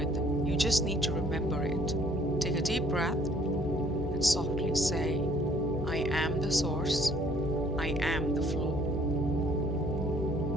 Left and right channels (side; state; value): left; noise; hum, 9 dB below the sound